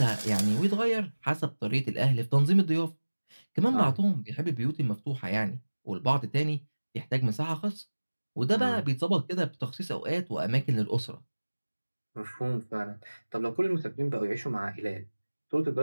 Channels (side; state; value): both; inverted; correlation -1.00